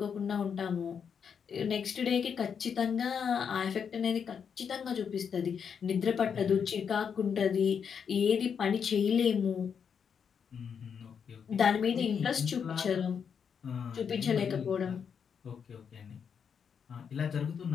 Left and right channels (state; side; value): quieter; right; 7.0 dB